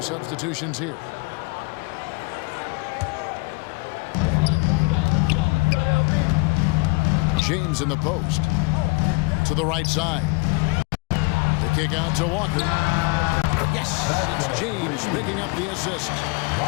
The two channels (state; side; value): quieter; right; 27.2 dB